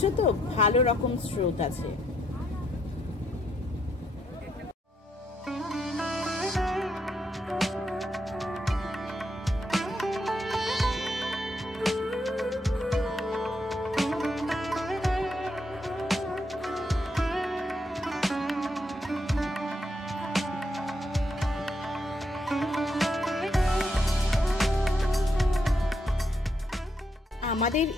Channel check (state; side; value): normal; both; correlation 0.77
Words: তো, ভালো রকম স্রোত আছে। আমাদের